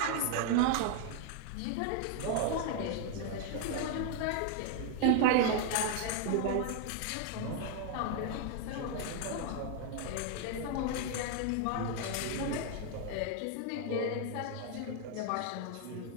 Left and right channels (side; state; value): both; different; correlation 0.00